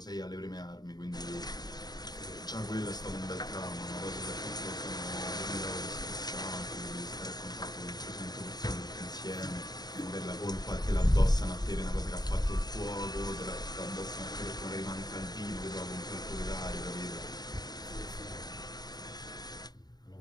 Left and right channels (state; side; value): late; right; 0.20 ms